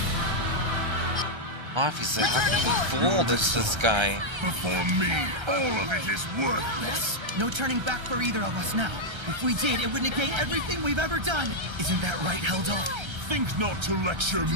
Obviously, how can you be fooled? It's this guy. Before me, all of it is worthless. No turning back for either of us now. If we did, it would negate everything we've ever done. Isn't that right, Heldal? Think not to lecture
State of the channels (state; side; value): late; left; 1.3 ms